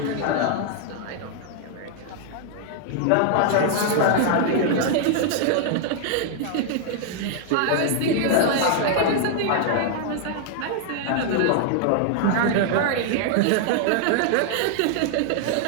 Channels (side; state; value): both; different; correlation -0.01